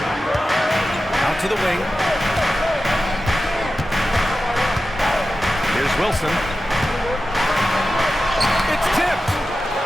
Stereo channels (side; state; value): both; normal; correlation 0.93